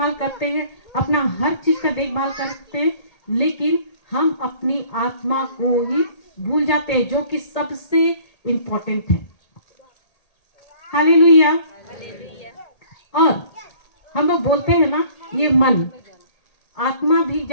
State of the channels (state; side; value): late; right; 1.8 ms